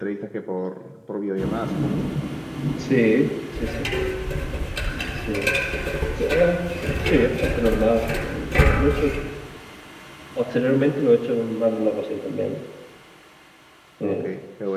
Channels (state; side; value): identical; both; correlation 1.00